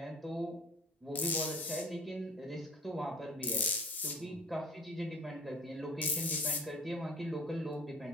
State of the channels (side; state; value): both; normal; correlation 0.44